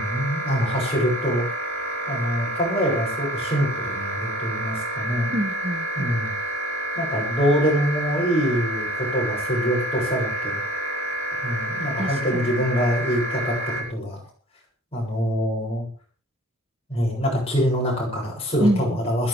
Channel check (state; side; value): normal; both; correlation 0.51